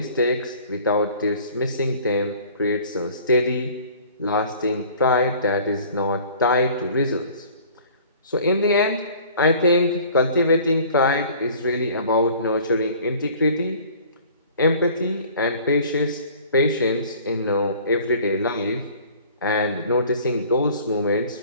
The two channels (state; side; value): inverted; both; correlation -0.50